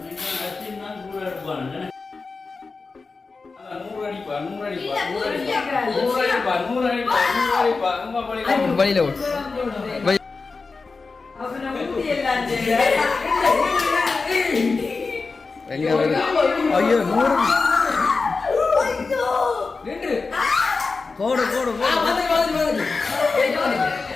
ஐயோ கோடு கோடு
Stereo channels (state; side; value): quieter; right; 4.2 dB